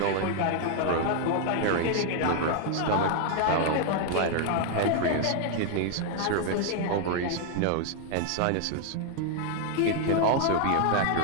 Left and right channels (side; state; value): both; different; correlation 0.00